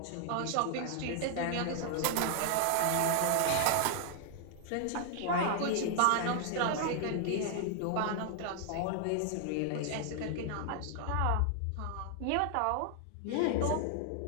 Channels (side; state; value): both; different; correlation 0.00